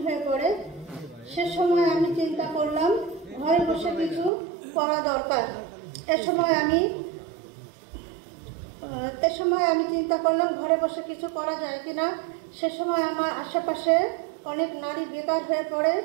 হয়ে পড়ে। সে সময় আমি চিন্তা করলাম ঘরে বসে কিছু করা দরকার। এ সময় আমি চিন্তা করলাম ঘরে বসে কিছু করা যায় কিনা। সে সময় আমার আশেপাশে অনেক নারী বেকার হয়ে পড়ে,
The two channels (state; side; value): drops out; left; at 4.3 s